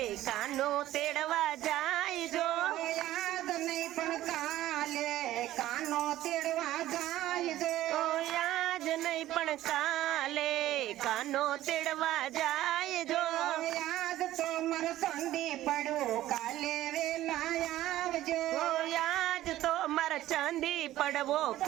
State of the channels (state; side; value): quieter; left; 14.4 dB